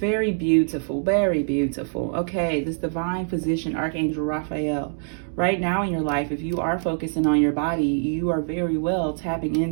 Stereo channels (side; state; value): left; silent; digital silence